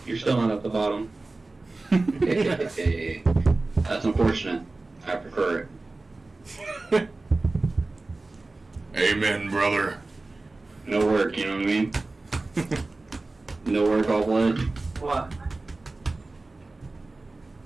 You're still not at the bottom. Hey, that's unfortunate. I prefer it. Amen, brother. No work, you know what I mean? No work, all blood. What?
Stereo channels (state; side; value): quieter; left; 3.3 dB